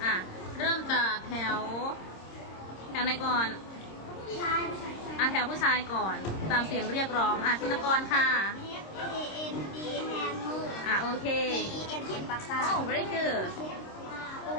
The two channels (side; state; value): right; late; 26 ms